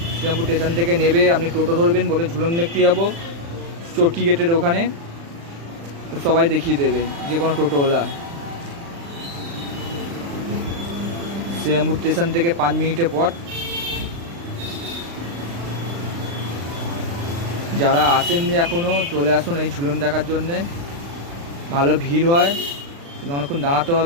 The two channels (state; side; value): late; left; 35 ms